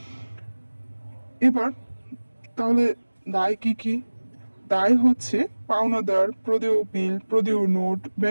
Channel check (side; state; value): both; inverted; correlation -1.00